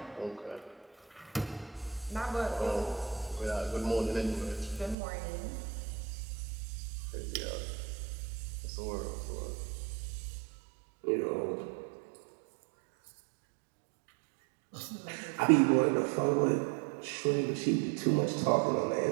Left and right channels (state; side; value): drops out; left; at 5.0 s